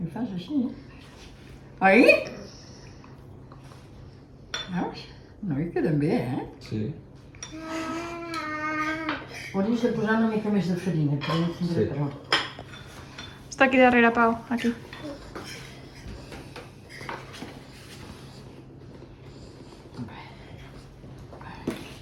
I fas així. Oi? Veus? No, hi queden bé, Sí. Hauries de posar una mica més de farina, que no tindré Sí. prou. Està aquí darrere, Pau. Aquí.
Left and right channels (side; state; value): both; identical; correlation 1.00